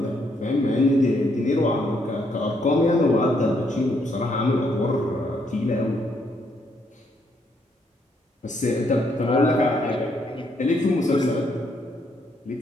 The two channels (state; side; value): normal; both; correlation 0.73